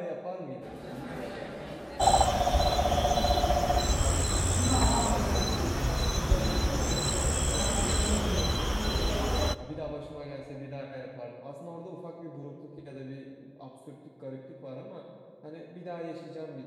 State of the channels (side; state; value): both; identical; correlation 1.00